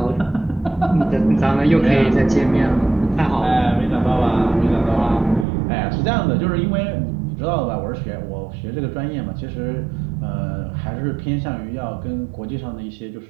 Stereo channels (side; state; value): left; drops out; at 5.5 s